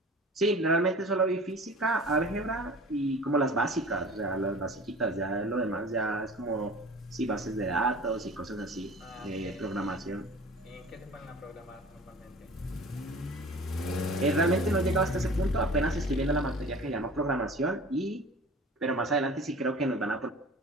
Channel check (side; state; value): both; normal; correlation 0.41